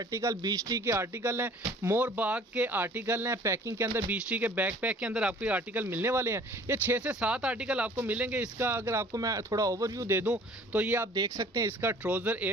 बीच टी के आर्टिकल हैं, मोर बाग के आर्टिकल हैं। पैकिंग के अंदर बीच टी के बैकपैक के अंदर आपको ये आर्टिकल मिलने वाले हैं। ये 6 से 7 आर्टिकल आपको मिलेंगे। इसका अगर आपको मैं थोड़ा ओवरव्यू दे दूँ तो ये आप देख सकते हैं। इसका ट्राउज़र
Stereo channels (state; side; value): normal; both; correlation 0.51